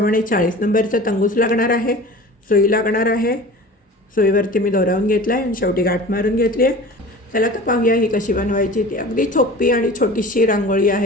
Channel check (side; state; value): both; normal; correlation 0.39